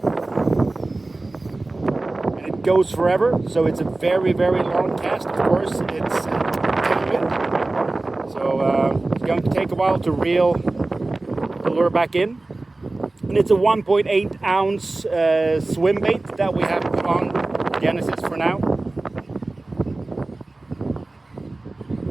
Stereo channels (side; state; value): left; quieter; 3.1 dB